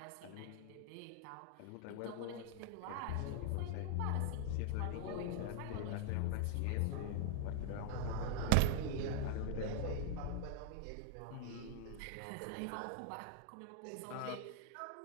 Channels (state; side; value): different; both; correlation -0.01